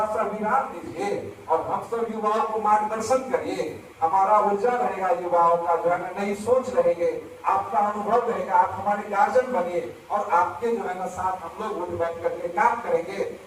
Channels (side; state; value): both; identical; correlation 1.00